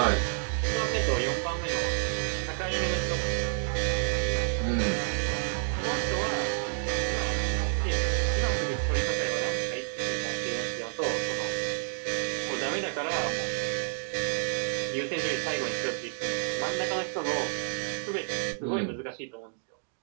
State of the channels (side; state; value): left; silent; digital silence